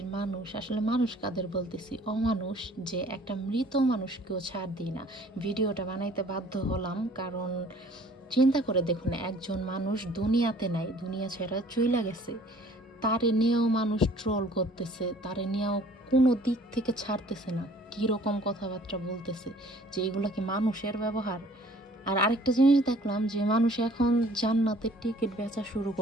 মানুষ, আসলে মানুষ কাদের বলতেছি, অমানুষ, যে একটা মৃত মানুষকেও ছাড় দিই না। ভিডিওটা বানাইতে বাধ্য হলাম কারণ চিন্তা করে দেখুন, একজন মানুষ দুনিয়াতে নাই, দুনিয়া ছেড়ে চইলা গেছে, তারে নিয়েও মানুষ ট্রোল করতেছে, তারে নিয়েও কোনো দিক থেকে ছাড়তেছে না, কীরকম কথাবার্তা বলতেছে, যে এগুলো কি মানুষের ব্যবহার? আর আরেকটা জিনিস দেখলাম যে মানুষ এখন জান্নাতের টিকিট বেচা শুরু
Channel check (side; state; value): both; normal; correlation 0.54